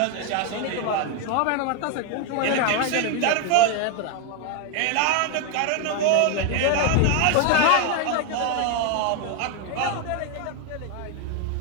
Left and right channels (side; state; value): both; different; correlation 0.01